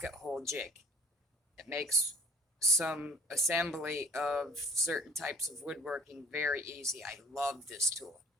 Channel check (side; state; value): both; normal; correlation 0.50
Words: hole jig. It makes some assembly of certain types of woodworking very easy. I love this tool.